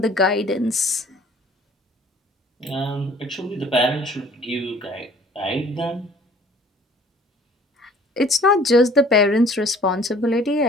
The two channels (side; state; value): both; normal; correlation 0.53